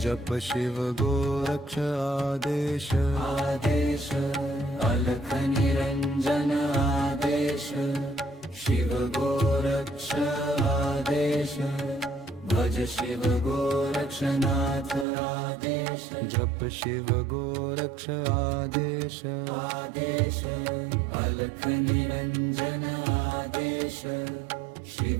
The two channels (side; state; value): left; drops out; at 15.1 s